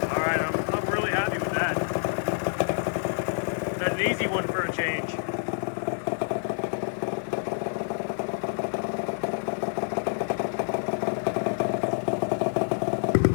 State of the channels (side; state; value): right; silent; digital silence